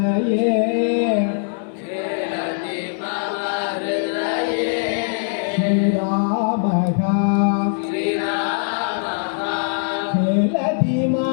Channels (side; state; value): right; silent; digital silence